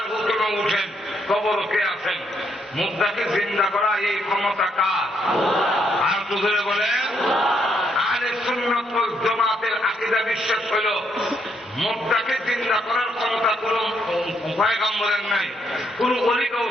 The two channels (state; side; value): normal; both; correlation 0.74